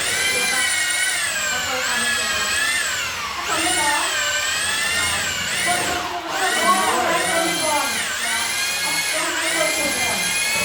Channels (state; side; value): identical; both; correlation 1.00